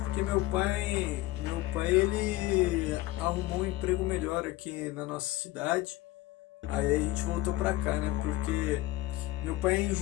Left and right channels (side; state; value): right; quieter; 17.8 dB